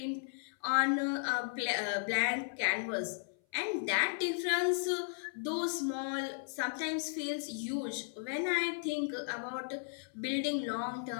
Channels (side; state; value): right; silent; 54 dB below the other